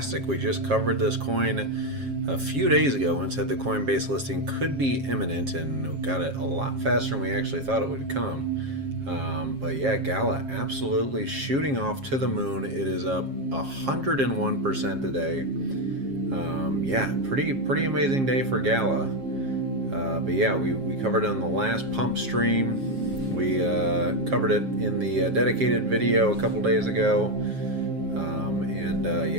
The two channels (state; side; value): late; left; 7.4 ms